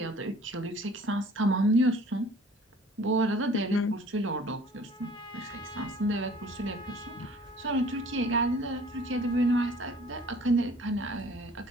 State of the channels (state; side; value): normal; both; correlation 0.51